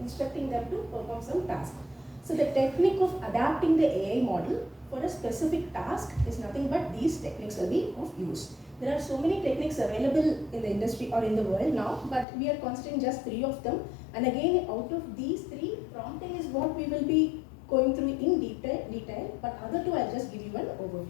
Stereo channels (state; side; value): drops out; right; at 12.2 s